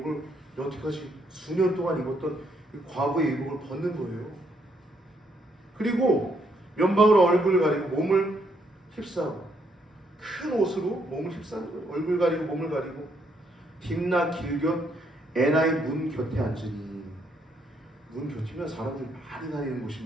여태까지 수년 동안 입었던 과부의 의복을 벗는 거예요. 그리고 면방으로 얼굴을 가리고 몸을 휩싸고 큰 옷으로 몸을 휩싸는 거예요. 얼굴 가리고 몸을 가리고 딥나 길곁 에나의 문 곁에 앉으니, 문 곁이면 사람들이 많이 다니는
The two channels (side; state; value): both; normal; correlation 0.73